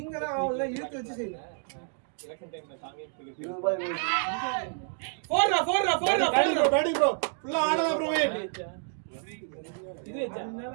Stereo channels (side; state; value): left; silent; 58 dB below the other